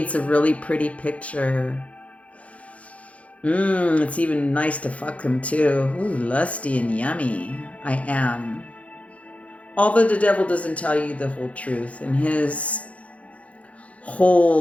a really pretty picture. It's even nice to fuck him too. Ooh, lusty and yummy. I am. Although the devil doesn't tell you the whole truth, and his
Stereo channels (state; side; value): late; right; 0.065 ms